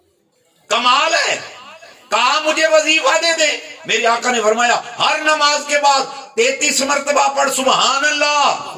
کمال ہے، کہا مجھے وظیفہ دے دے۔ میرے آقا نے فرمایا ہر نماز کے بعد 33 مرتبہ پڑھ سبحان اللہ،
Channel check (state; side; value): identical; both; correlation 1.00